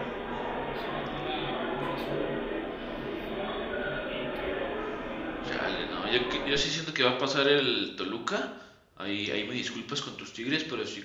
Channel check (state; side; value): identical; both; correlation 1.00